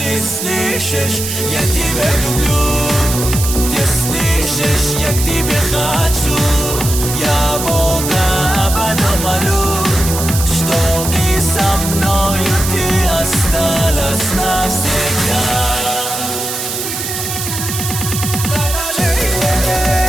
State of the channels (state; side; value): noise; right; hiss, 5 dB below the sound